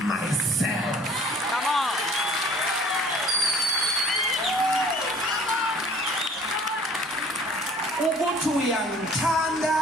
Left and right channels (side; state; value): both; normal; correlation 0.51